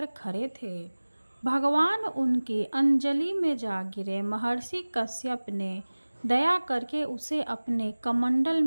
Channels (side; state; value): both; inverted; correlation -1.00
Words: खड़े थे। भगवान उनकी अंजलि में जा गिरे। महर्षि कश्यप ने दया करके उसे अपने कमंडल